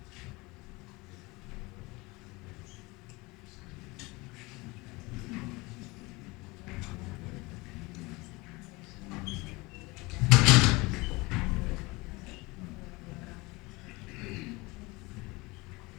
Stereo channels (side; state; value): right; quieter; 23.9 dB